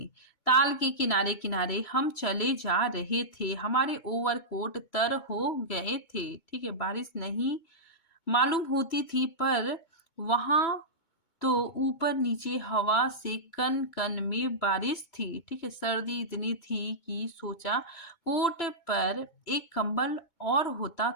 ताल के किनारे किनारे हम चले जा रहे थे, हमारे ओवरकोट तर हो गए थे। ठीक है, बारिश नहीं मालूम होती थी, पर वहां तो ऊपर नीचे हवा से कन कन में बारिश थी। ठीक है, सर्दी इतनी थी कि सोचा कोट पर एक कंबल और होता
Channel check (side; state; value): right; late; 2.2 ms